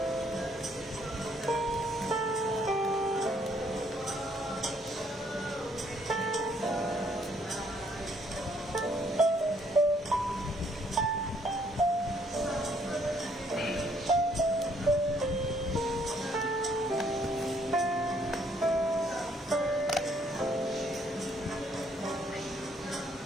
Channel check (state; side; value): normal; both; correlation 0.66